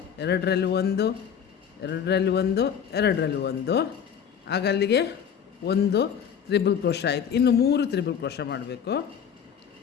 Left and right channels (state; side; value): quieter; right; 7.9 dB